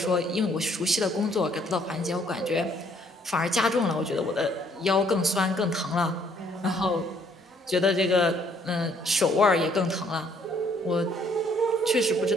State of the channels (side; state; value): both; normal; correlation 0.65